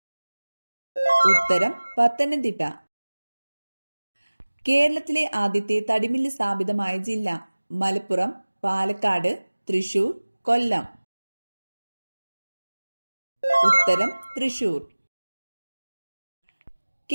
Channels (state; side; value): inverted; both; correlation -1.00